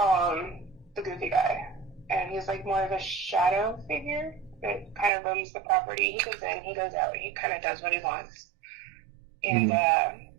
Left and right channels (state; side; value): drops out; left; at 5.1 s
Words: him the goofy guy, and he's like more of a shadow figure that kind of roams the property. He goes in, he goes out, he kind of does what he wants. And